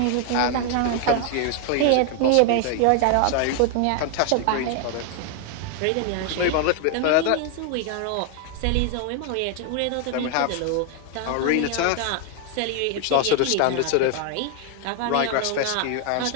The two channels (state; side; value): different; both; correlation 0.00